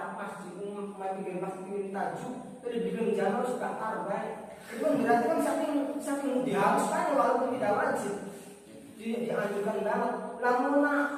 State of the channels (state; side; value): identical; both; correlation 1.00